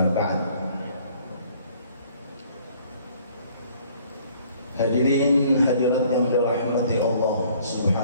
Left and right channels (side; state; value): both; inverted; correlation -0.58